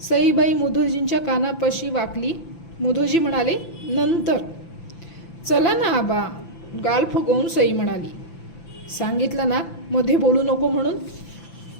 सईबाई मुधोजींच्या कानापाशी वाकली. मुधोजी म्हणाले, नंतर. चला ना आबा, गाल फुगवून सई म्हणाली. सांगितलं ना मध्ये बोलू नको म्हणून.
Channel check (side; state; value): right; late; 5.9 ms